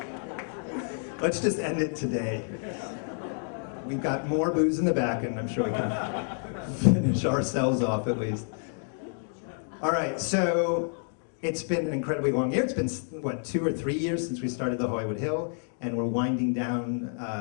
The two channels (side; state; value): right; silent; 59 dB below the other